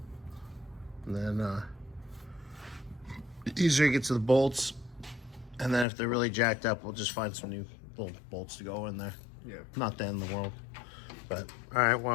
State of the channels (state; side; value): drops out; right; at 5.9 s